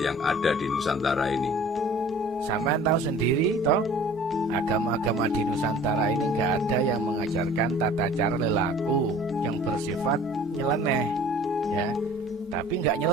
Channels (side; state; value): both; normal; correlation 0.47